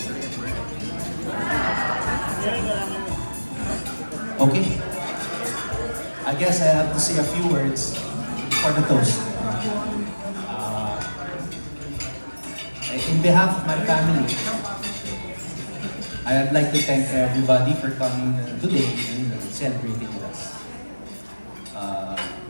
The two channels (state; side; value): inverted; both; correlation -1.00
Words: Okay. I guess I have to say a few words for the toast. In behalf of my family, I'd like to thank everybody for coming today and celebrating with us.